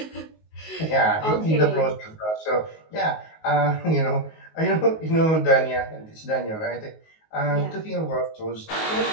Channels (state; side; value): late; right; 19 ms